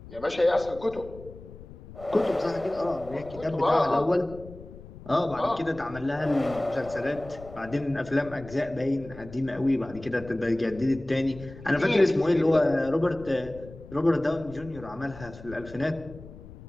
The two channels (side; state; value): left; noise; rumble, 17 dB below the sound